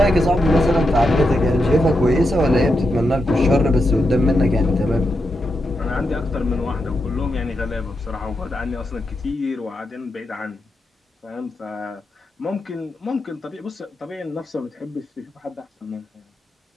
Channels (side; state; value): both; normal; correlation 0.86